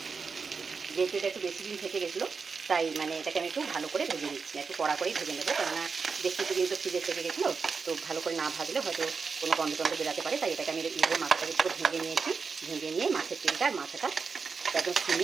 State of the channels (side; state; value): left; quieter; 5.1 dB